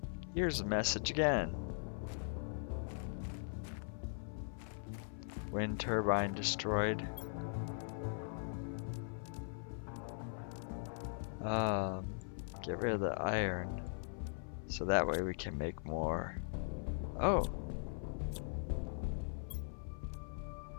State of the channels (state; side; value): silent; right; 51 dB below the other